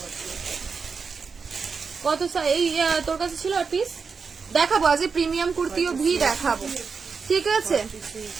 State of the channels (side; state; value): left; quieter; 5.3 dB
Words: কত এই তোর কাছে ছিল আর পিস দেখাবো, আজ প্রিমিয়াম কুর্তিও ভি দেখাবো, ঠিক আছে।